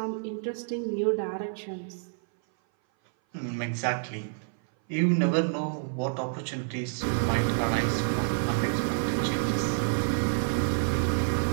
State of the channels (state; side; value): silent; left; 57 dB below the other